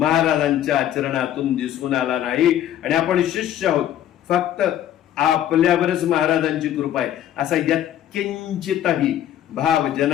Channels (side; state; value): right; quieter; 11.3 dB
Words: आचरणातून दिसून आला नाही आणि आपण शिष्य आहोत फक्त आपल्यावरच महाराजांची कृपा आहे असा यत्किंचितही भाव